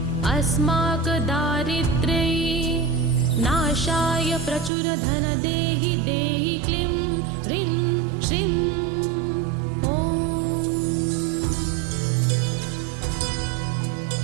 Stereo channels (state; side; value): drops out; left; at 4.7 s